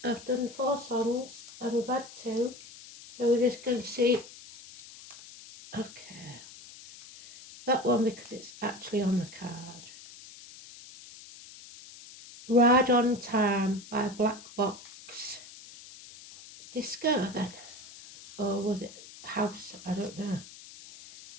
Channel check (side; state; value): left; noise; hiss, 17 dB below the sound